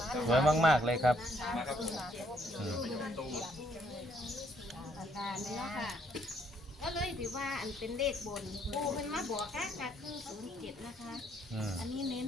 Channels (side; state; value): both; normal; correlation 0.68